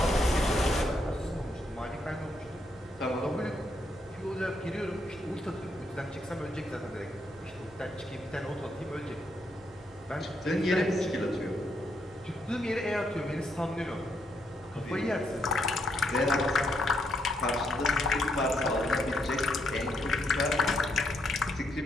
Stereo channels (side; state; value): both; normal; correlation 0.77